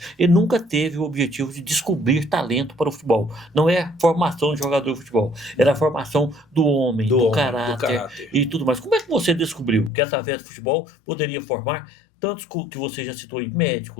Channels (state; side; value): drops out; right; at 9.9 s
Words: ele nunca teve o objetivo de descobrir talento para o futebol. Não é a formação de jogador de futebol, era a formação do homem, do caráter e tudo mais. Como é que você descobriu que através do futebol poderia formar tantos que você já citou aí,